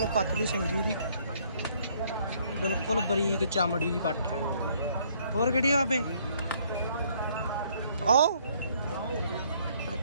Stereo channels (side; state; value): both; inverted; correlation -0.65